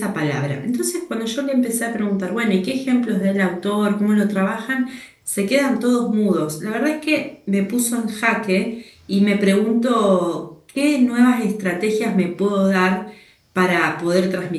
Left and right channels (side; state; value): both; identical; correlation 1.00